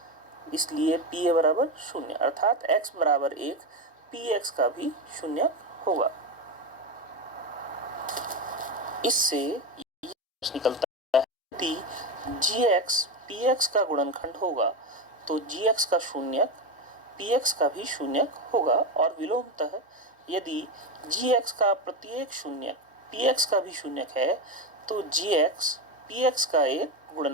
इसलिए pa बराबर 0, अर्थात x बराबर 1 px का भी शून्यक होगा। इससे यह निकलता है यदि gx px का गुणनखंड होगा तो gx का शून्यक px का भी शून्यक होगा, और विलोमतः यदि gx का प्रत्येक शून्यक px का भी शून्यक है तो gx px का एक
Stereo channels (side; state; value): both; normal; correlation 0.15